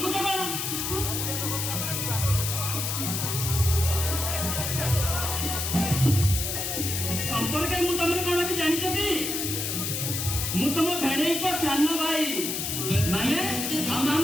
से बन संपर्क मु तमरे कोन की जानि छथि मु तम भेणै को सानो भाई माने हम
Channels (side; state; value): left; noise; hiss, 2 dB below the sound